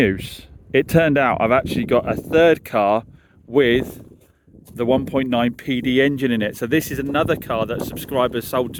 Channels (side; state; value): both; identical; correlation 1.00